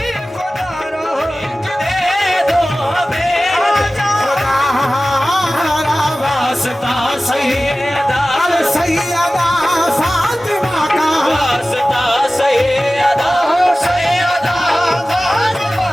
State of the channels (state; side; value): normal; both; correlation 0.96